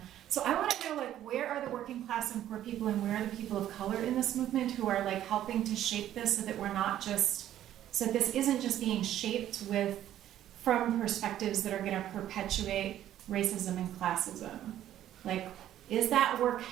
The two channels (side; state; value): left; quieter; 12.0 dB